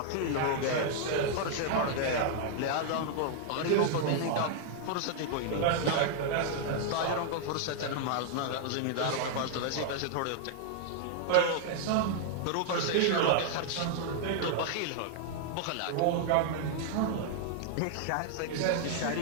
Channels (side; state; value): both; different; correlation -0.01